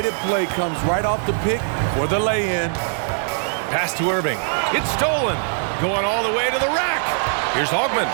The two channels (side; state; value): left; silent; 64 dB below the other